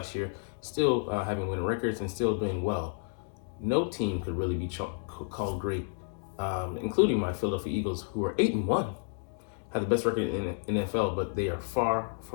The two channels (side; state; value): right; silent; digital silence